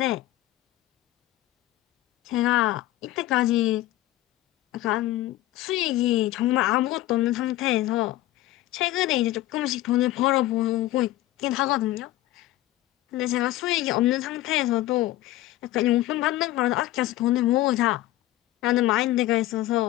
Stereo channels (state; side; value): quieter; right; 15.8 dB